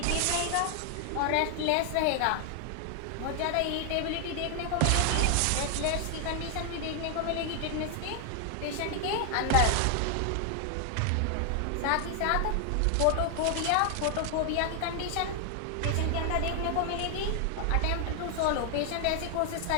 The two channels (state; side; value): different; both; correlation 0.00